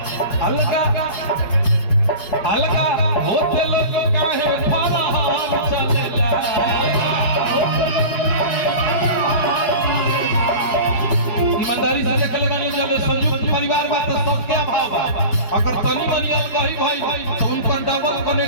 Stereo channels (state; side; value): late; right; 5.1 ms